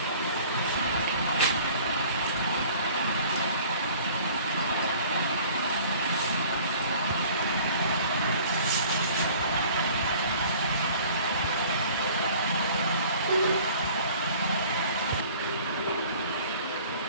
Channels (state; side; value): inverted; both; correlation -0.50